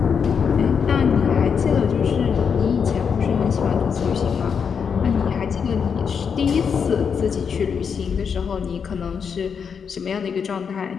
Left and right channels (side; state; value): right; quieter; 6.6 dB